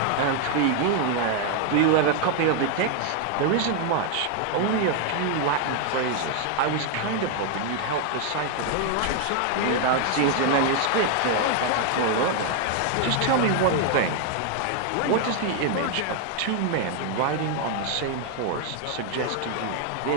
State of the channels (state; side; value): different; both; correlation 0.00